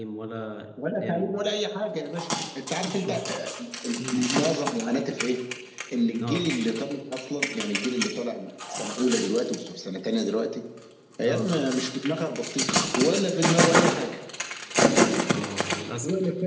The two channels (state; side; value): identical; both; correlation 1.00